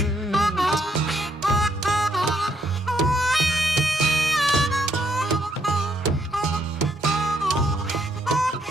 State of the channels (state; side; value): normal; both; correlation 0.72